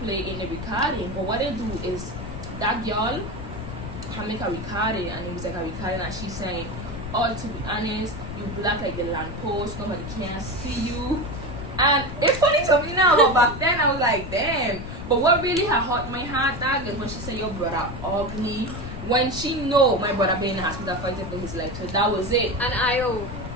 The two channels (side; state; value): left; noise; rumble, 8 dB below the sound